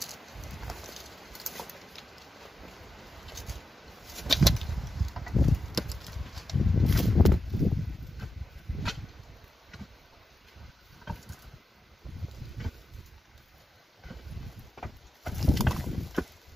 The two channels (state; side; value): normal; both; correlation 0.89